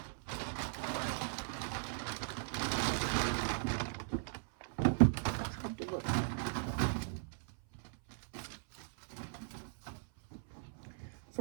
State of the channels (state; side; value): silent; left; 52 dB below the other